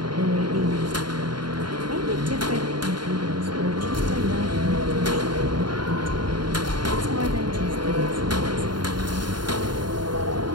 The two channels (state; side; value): late; left; 0.72 ms